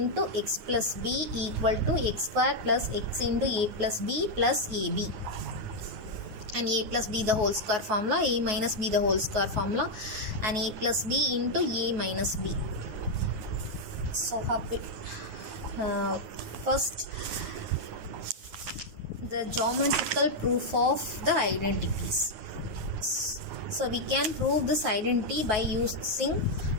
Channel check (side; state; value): left; late; 9.4 ms